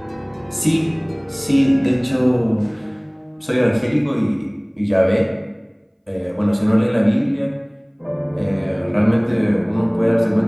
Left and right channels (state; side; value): identical; both; correlation 1.00